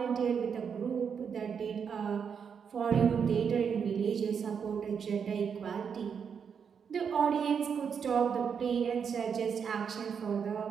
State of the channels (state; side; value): quieter; left; 6.8 dB